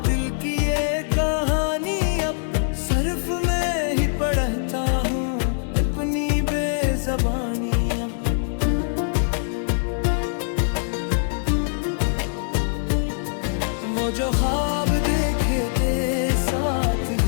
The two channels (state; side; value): silent; right; digital silence